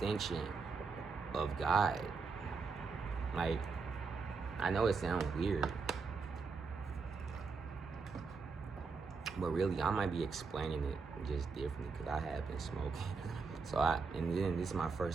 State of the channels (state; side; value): quieter; left; 4.8 dB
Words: of God. Like, I know it sounds weird, but really, I might be explaining it just differently because I have been smoking. And then this is my